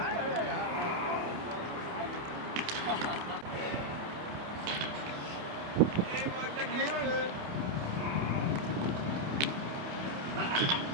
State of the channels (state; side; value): late; left; 28 ms